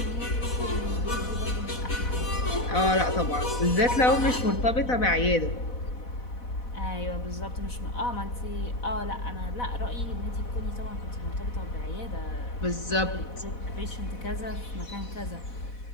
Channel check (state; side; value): late; right; 4.1 ms